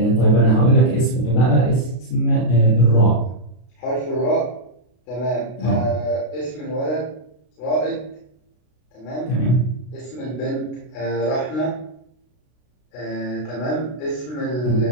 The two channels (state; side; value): late; right; 33 ms